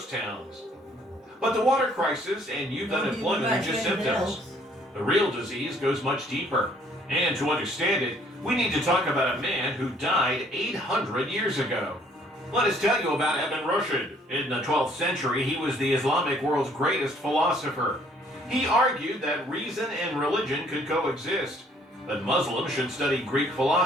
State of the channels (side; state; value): both; normal; correlation 0.61